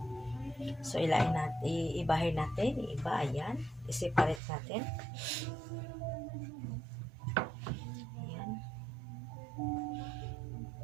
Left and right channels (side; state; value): left; drops out; at 4.4 s